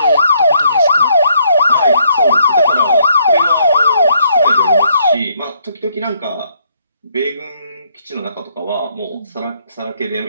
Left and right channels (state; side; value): inverted; both; correlation -0.70